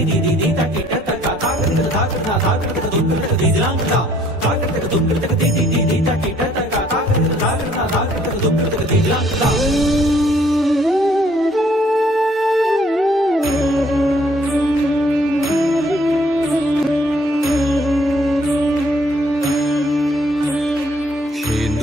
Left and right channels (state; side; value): normal; both; correlation 0.62